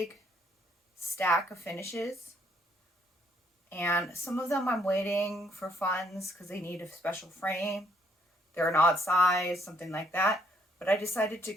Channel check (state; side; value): normal; both; correlation 0.68